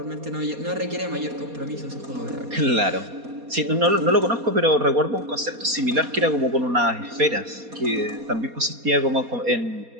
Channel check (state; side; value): late; left; 4.2 ms